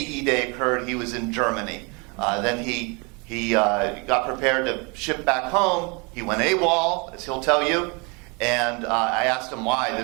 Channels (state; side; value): quieter; left; 30.6 dB